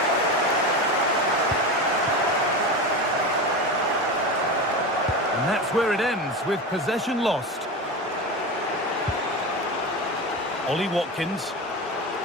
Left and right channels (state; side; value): normal; both; correlation 0.24